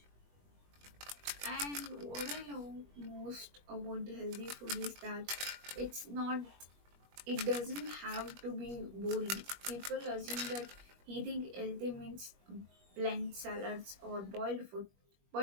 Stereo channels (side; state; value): left; late; 21 ms